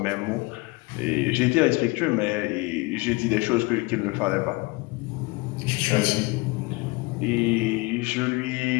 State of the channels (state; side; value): quieter; right; 25.2 dB